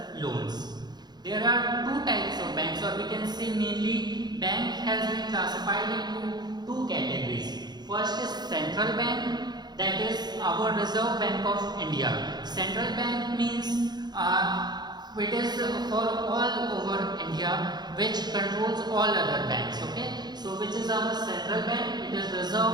loans. There are two types of banks, or we can say mainly bank has been classified into two categories. First is central bank, that is our Reserve Bank of India. Central bank means it is for all over India which controls all other banks. Okay, so which is our central bank? It is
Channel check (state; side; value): late; left; 0.20 ms